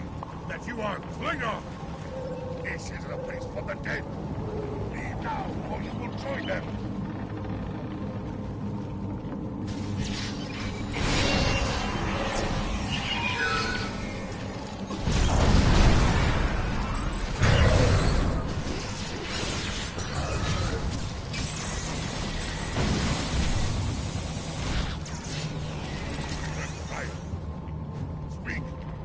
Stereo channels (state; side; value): identical; both; correlation 1.00